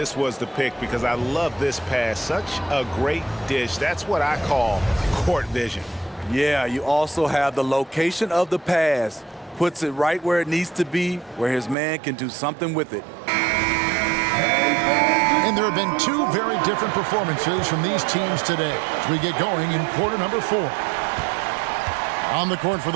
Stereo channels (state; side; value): drops out; left; at 11.8 s